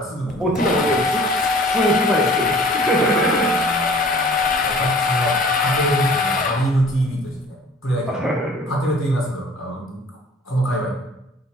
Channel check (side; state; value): both; normal; correlation 0.49